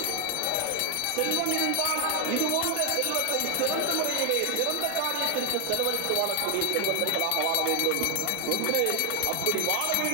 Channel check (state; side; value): different; both; correlation 0.00